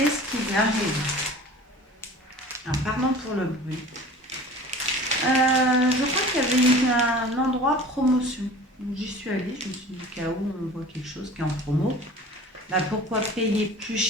qui lui arrive? Alors, pardon pour le bruit. Je crois qu'il y avait un endroit promotion. Donc, j'y suis allée, je me suis dit, au cas où on voit quelque chose qui est en promo, bah, pourquoi payer plus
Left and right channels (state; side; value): normal; both; correlation 0.42